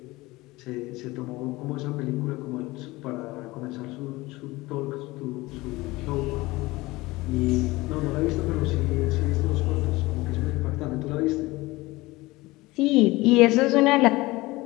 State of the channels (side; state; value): right; quieter; 20.6 dB